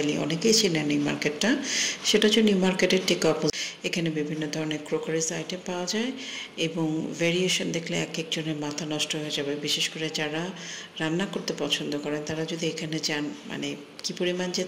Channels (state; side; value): identical; both; correlation 1.00